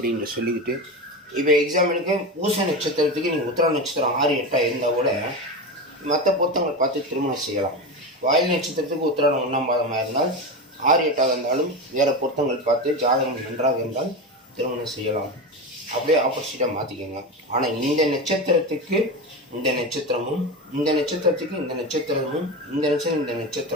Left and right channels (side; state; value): both; normal; correlation 0.21